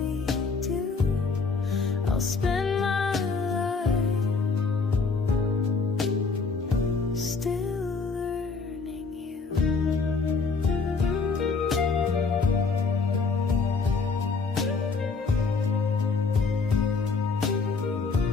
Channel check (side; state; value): right; quieter; 4.6 dB